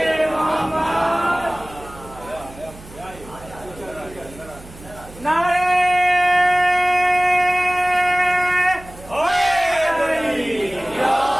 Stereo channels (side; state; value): right; noise; hum, 19 dB below the sound